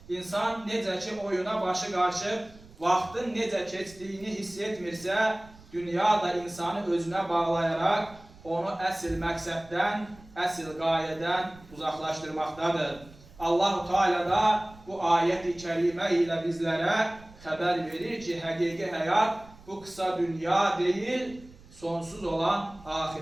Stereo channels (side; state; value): right; noise; rumble, 22 dB below the sound